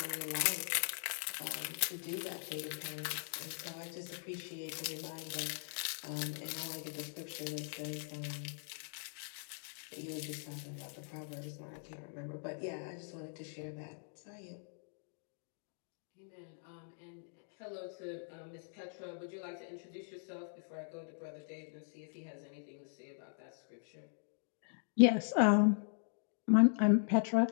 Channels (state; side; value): silent; right; digital silence